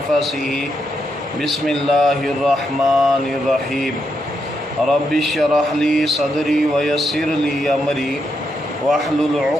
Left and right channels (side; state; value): both; normal; correlation 0.81